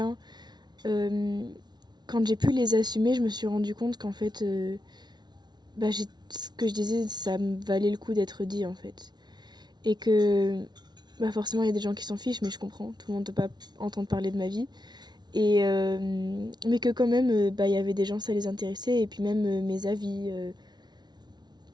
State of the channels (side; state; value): left; late; 0.20 ms